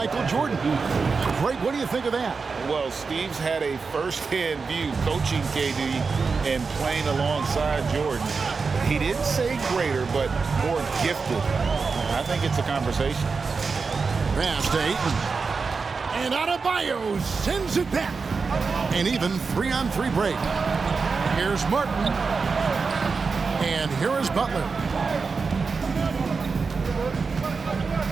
Jordan. Greg, what do you think of that? Well, Steve's had a first-hand view coaching KD and playing alongside Jordan. He didn't say greater, but more gifted. I think it's a conversation. Pass to Ayton. And Adebayo sends it back. And even 3-on-3 break. Here's Martin. And here is Butler.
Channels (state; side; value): quieter; left; 4.8 dB